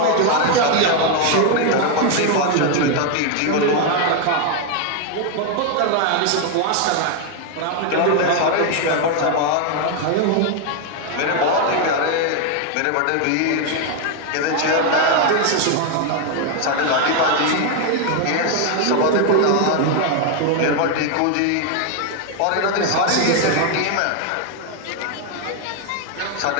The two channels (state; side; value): different; both; correlation 0.01